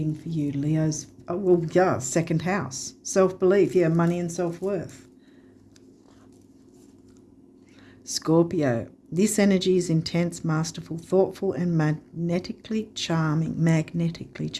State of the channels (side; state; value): both; identical; correlation 1.00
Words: for you? Leo's, second house. Self-belief, money and self-worth. Scorpio. This energy is intense, masterful, thoughtful and magnetically charming,